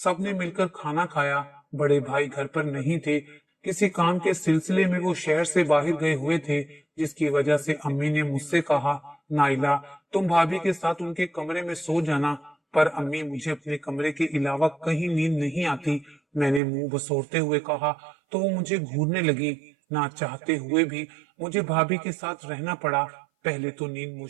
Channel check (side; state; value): left; drops out; at 16.6 s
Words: मिलकर खाना खाया। बड़े भाई घर पर नहीं थे, किसी काम के सिलसिले में वो शहर से बाहर गए हुए थे, जिसकी वजह से अम्मी ने मुझसे कहा, नाइला तुम भाभी के साथ उनके कमरे में सो जाना। पर अम्मी, मुझे अपने कमरे के अलावा कहीं नींद नहीं आती। मैंने मुंह बसोरते हुए कहा तो वो मुझे घूरने लगी। ना चाहते हुए भी मुझे भाभी के साथ रहना पड़ा। पहले तो नींद